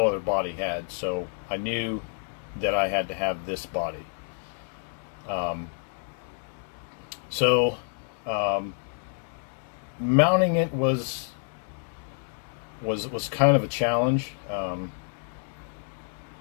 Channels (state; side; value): silent; right; 59 dB below the other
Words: other body had. So I knew that I had to have this body. Mounting it was kind of a challenge.